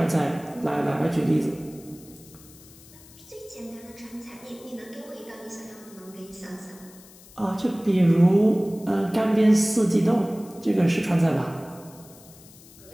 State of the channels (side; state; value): left; noise; hiss, 22 dB below the sound